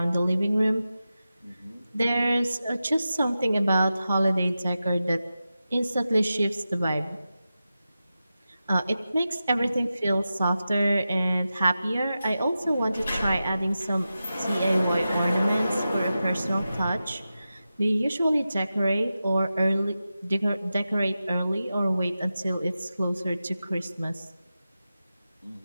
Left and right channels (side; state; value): both; inverted; correlation -0.92